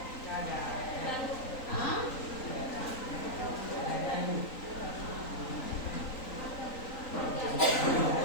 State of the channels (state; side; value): late; right; 3.9 ms